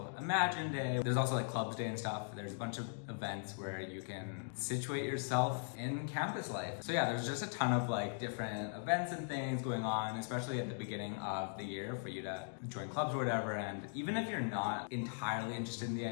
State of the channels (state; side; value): silent; right; digital silence